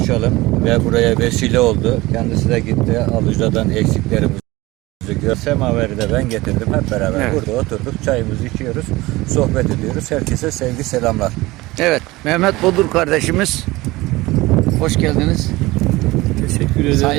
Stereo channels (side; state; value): left; quieter; 20.2 dB